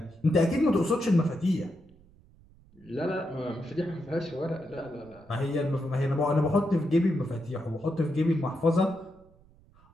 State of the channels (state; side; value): noise; right; rumble, 27 dB below the sound